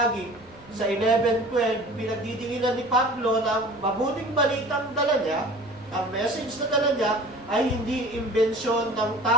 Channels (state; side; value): noise; left; rumble, 25 dB below the sound